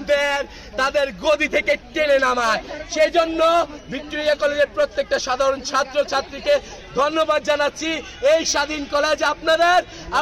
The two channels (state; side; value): identical; both; correlation 1.00